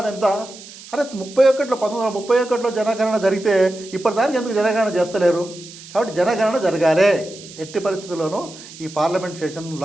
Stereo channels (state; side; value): noise; right; hiss, 17 dB below the sound